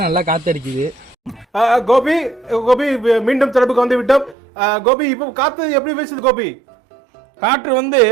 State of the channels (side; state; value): left; drops out; at 4.4 s